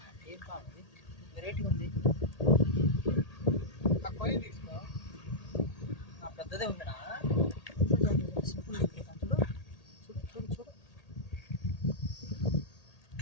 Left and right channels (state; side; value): late; right; 1.8 ms